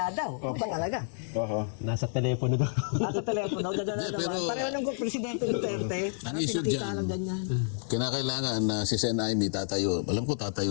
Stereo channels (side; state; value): right; silent; digital silence